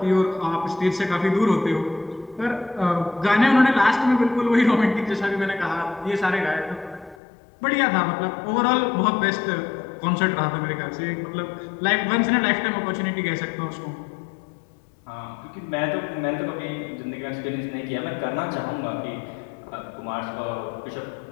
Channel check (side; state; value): right; drops out; at 7.2 s